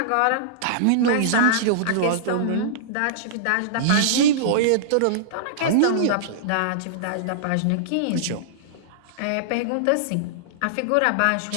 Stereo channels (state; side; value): different; both; correlation -0.02